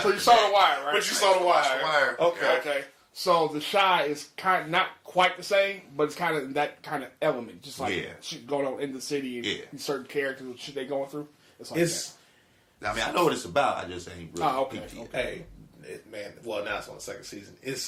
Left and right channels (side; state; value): both; identical; correlation 1.00